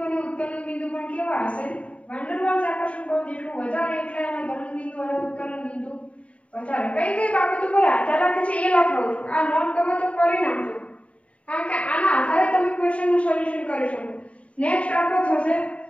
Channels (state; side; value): late; right; 0.064 ms